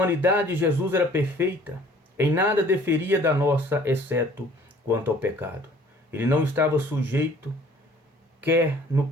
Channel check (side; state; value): both; normal; correlation 0.54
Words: de Jesus era perfeita, em nada diferia da nossa, exceto quanto ao pecado. Ele não estava sujeito, quer no